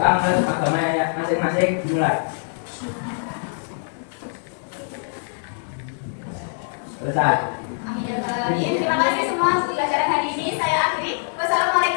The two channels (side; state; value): right; silent; digital silence